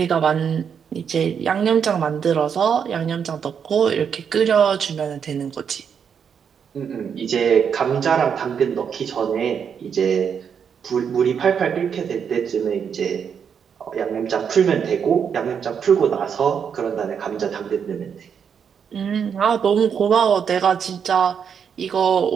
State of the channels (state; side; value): quieter; left; 7.3 dB